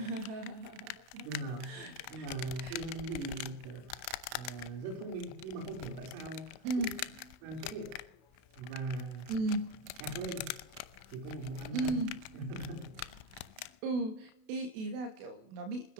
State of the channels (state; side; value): late; left; 32 ms